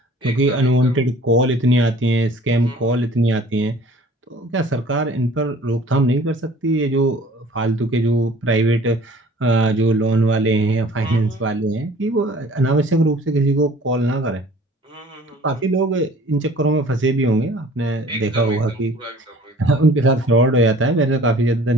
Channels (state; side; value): normal; both; correlation 0.50